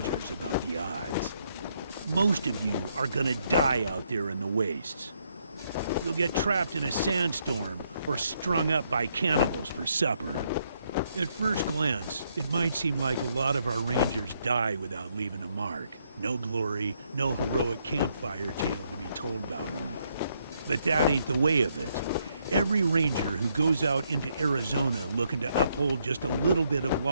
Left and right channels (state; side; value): inverted; both; correlation -0.74